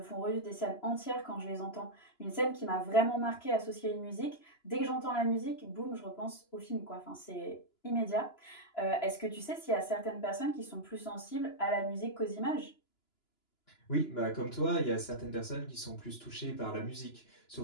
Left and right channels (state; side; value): late; right; 2.9 ms